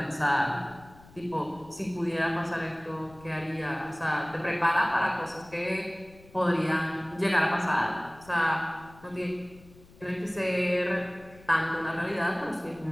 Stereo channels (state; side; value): noise; left; rumble, 23 dB below the sound